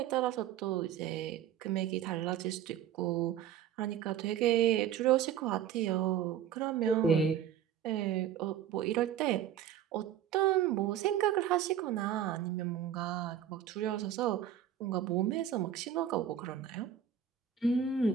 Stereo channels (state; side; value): quieter; left; 9.6 dB